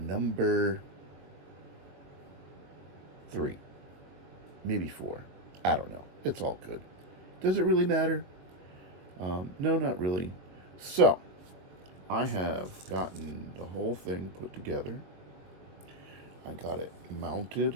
3, maybe 4. I don't know. It's all good. Does it really matter? No, not really. So, I have gotten the whole thing put together. I got it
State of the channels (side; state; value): left; late; 21 ms